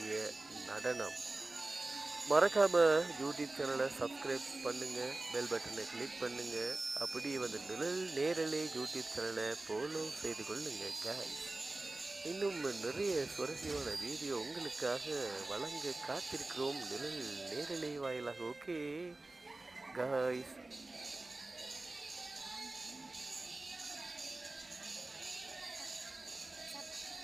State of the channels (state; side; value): quieter; left; 3.0 dB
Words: நடனம். மறக்காம யூடியூப் சேனலை சப்ஸ்கிரைப் பண்ணுங்க, பெல் பட்டனை கிளிக் பண்ணுங்க. அப்படி வந்து நிழல் நேரலை யூடியூப் சேனலை ஃபாலோ செய்து கொள்ளுங்க guys. இன்னும் நிறைய சுவாரஸ்யமான வீடியோ உங்களுக்காக வழங்க காத்திருக்கிறோம் நிழல் நேரலை வாயிலாக. ஓகே காய்ஸ்,